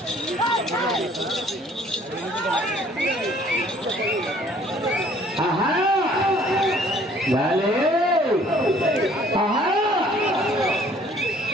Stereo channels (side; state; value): both; normal; correlation 0.57